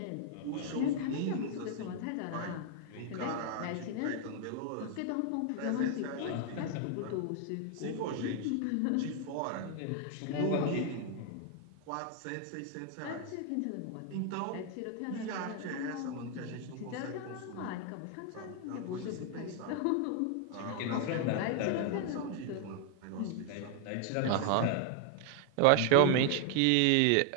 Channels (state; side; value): different; both; correlation 0.00